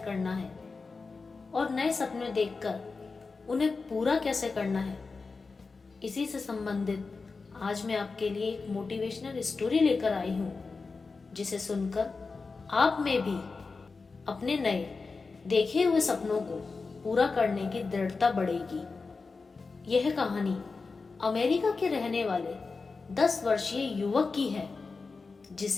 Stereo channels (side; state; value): right; quieter; 4.3 dB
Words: है और नए सपने देखकर उन्हें पूरा कैसे करना है, इसी से संबंधित आज मैं आपके लिए एक मोटिवेशनल स्टोरी लेकर आई हूँ, जिसे सुनकर आप में भी अपने नए देखे हुए सपनों को पूरा करने की दृढ़ता बढ़ेगी। यह कहानी अमेरिका के रहने वाले 10 वर्षीय युवक की है,